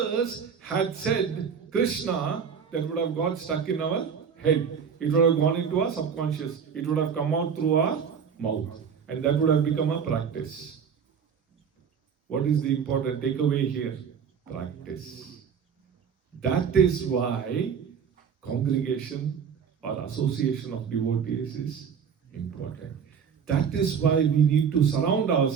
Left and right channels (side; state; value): left; quieter; 6.9 dB